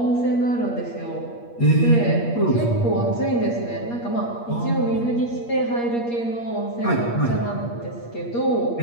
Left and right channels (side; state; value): right; late; 8.5 ms